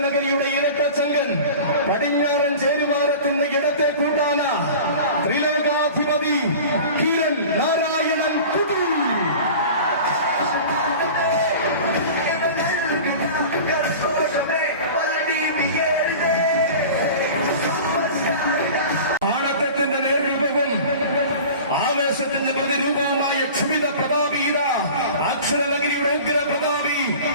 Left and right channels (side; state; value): both; inverted; correlation -0.38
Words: ഇരട്ടച്ചങ്കൻ, പടിഞ്ഞാറൻ ചേരുവാരത്തിന്റെ ഇടത്തെ കൂട്ടാന ത്രിലോകാധിപതി കിരൺ നാരായണൻ കുട്ടി. ആവേശത്തിന്റെ പ്രതിരൂപവുമായ ക്ഷുഭിത പ്രതാപീത അക്ഷരനഗരിയുടെ ഉഗ്ര പ്രതാപി